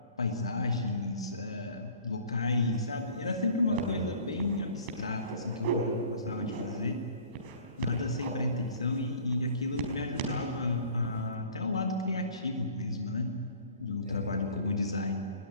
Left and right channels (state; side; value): inverted; both; correlation -0.48